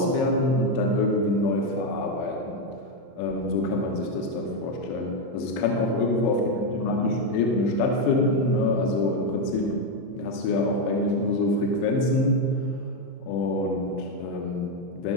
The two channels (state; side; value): late; right; 25 ms